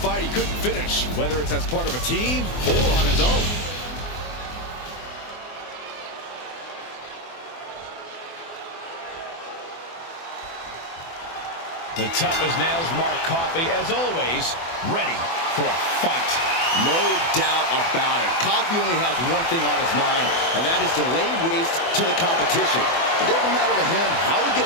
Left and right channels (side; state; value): right; late; 24 ms